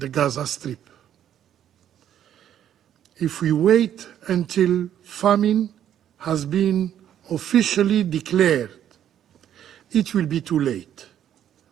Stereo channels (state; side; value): quieter; left; 10.4 dB